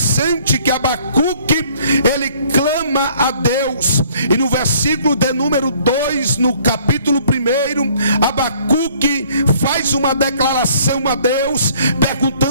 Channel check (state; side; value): inverted; both; correlation -0.59